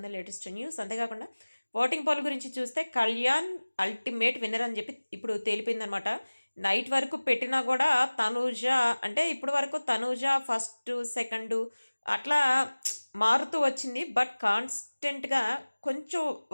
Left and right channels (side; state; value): both; inverted; correlation -1.00